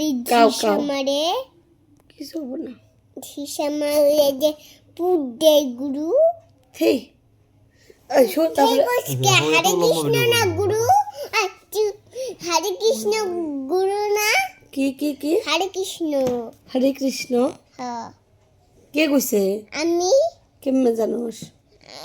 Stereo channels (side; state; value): both; identical; correlation 1.00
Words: কাউ ঝিসা কাউ। মারে। কিছু হবো না। ঝিসা মারে যে পুট দেয় গুরু। হেই শোন তারপরে হরে কৃষ্ণ না গুরু। হরে কৃষ্ণ গুরু না। কি হরে কৃষ্ণ। হরে কৃষ্ণ হ্যাঁ কে কইছে? আমি কেমনে জানোস?